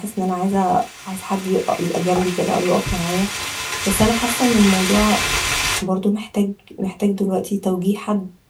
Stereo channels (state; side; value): identical; both; correlation 1.00